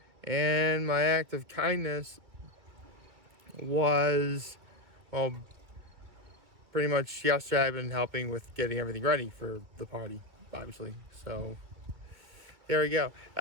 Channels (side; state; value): left; late; 2.1 ms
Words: And my act of kindness was, well, pretty much yesterday I've been helping with getting everything ready for the party, obviously. So there we go.